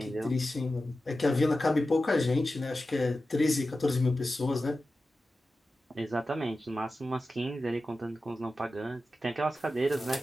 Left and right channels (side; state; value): both; normal; correlation 0.93